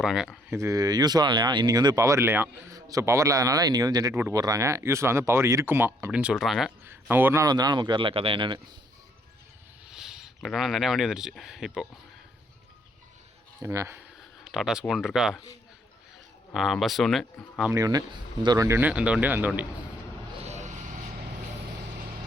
இது யூஸ்வலாக இல்லையா, இன்றைக்கி வந்து பவர் இல்லையா. ஸோ பவர் இல்லாதனால இன்றைக்கி வந்து ஜென்ரேட் போட்டு போடுறாங்க. யூஸ்வலாக வந்து பவர் இருக்குமா அப்படின்னு சொல்கிறாங்க. நம்ம ஒரு நாள் வந்தனால நமக்கு வரல கதை என்னென்னு. பட் ஆனால் நிறையா வண்டி வந்துடுச்சு இப்போது. என்னங்க டாடா ஸ்கூன் இருக்கா, பஸ் ஒன்று, ஆம்னி ஒன்று, இந்த ஒரு வண்டி ஒன்று, அந்த வண்டி.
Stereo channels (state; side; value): normal; both; correlation 0.67